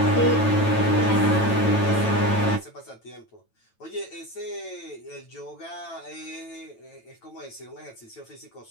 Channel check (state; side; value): late; right; 9.0 ms